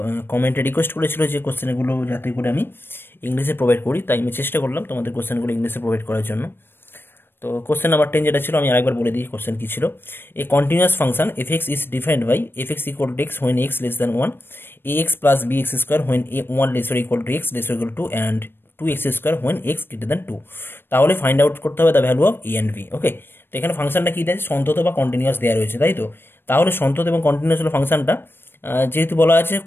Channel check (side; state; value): right; late; 0.10 ms